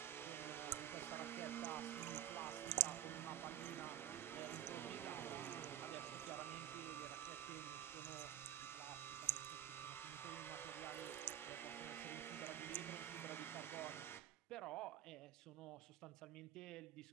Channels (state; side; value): quieter; left; 12.2 dB